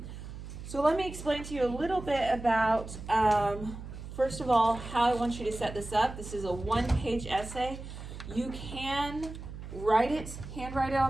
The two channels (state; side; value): noise; right; hum, 11 dB below the sound